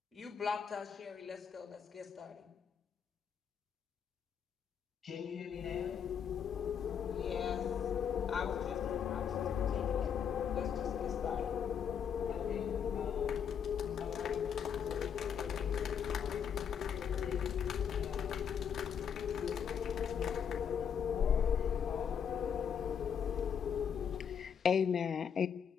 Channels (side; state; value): right; quieter; 7.6 dB